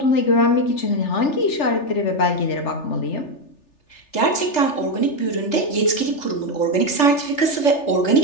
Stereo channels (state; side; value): late; right; 3.4 ms